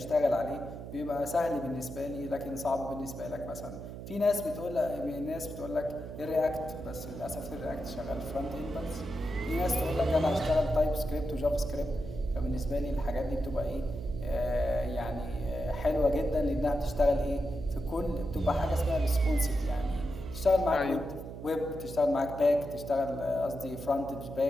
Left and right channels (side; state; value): right; noise; hum, 10 dB below the sound